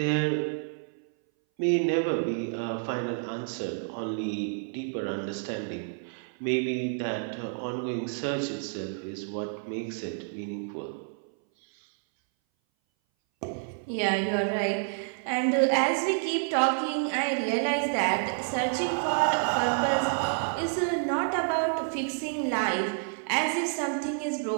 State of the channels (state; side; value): silent; left; 59 dB below the other